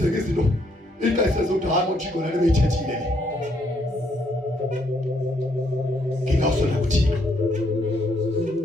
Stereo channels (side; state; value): both; normal; correlation 0.72